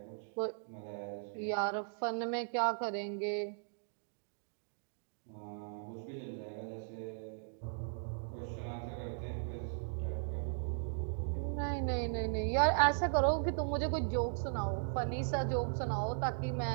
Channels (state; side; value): silent; left; digital silence